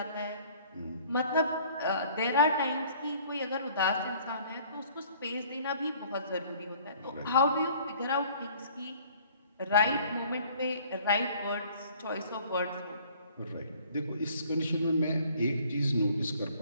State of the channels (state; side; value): inverted; both; correlation -0.55